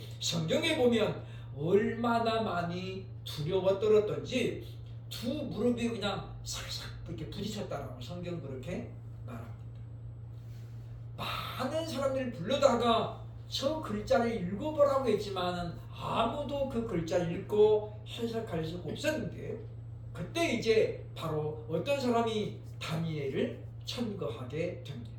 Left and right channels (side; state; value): both; identical; correlation 1.00